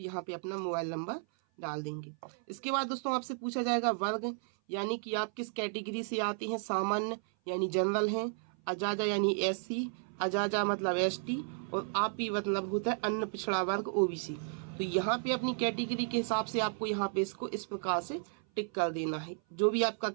पे अपना मोबाइल नंबर डाल देंगे। इसके बाद दोस्तों आपसे पूछा जाएगा वर्ग, यानी कि आप किस कैटेगरी से आते हैं। सामान्य यानी जनरल हैं, अजाजा यानी एससी, अजाजा मतलब एसटी, और आपी मतलब होता है अन्य पिछड़ा वर्ग ओबीसी। तो यहाँ पे अपनी कैटेगरी के हिसाब से आपको यहाँ पे इसको इस प्रकार से टिक कर देना है। जो भी आपका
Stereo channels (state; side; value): silent; left; 55 dB below the other